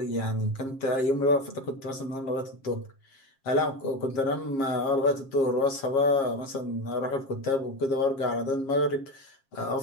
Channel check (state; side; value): late; right; 7.4 ms